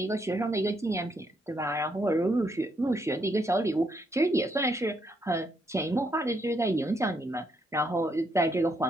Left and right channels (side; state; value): both; normal; correlation 0.75